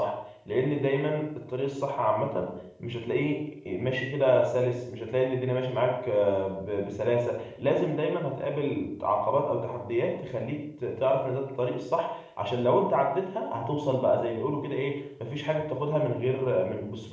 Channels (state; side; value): identical; both; correlation 1.00